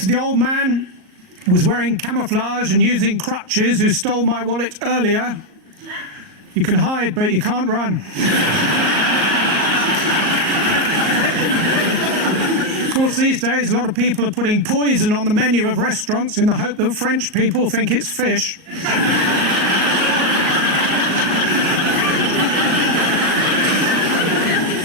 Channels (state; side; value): late; left; 38 ms